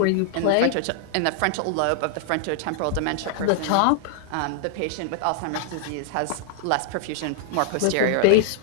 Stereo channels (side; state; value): both; different; correlation -0.01